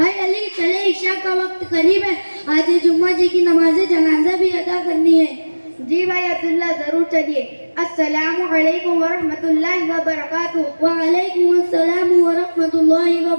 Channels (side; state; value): both; inverted; correlation -1.00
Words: علی چلے، عشاء کا وقت قریب ہے، آج جمعہ جی کی نماز جنازہ بھی ادا کرنی ہے۔ جی بھائی عبداللہ، ضرور چلیے۔ السلام علیکم ورحمۃ اللہ وبرکاتہ۔ وعلیکم السلام ورحمۃ اللہ